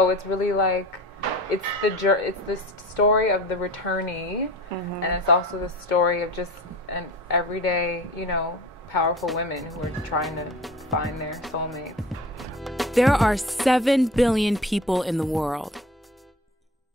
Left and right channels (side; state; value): both; normal; correlation 0.38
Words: it's really like, it's the story of the returnee, and it's also the story of just an everyday, powerful women who are trying to find their soulmate. There are 7 billion people in the world.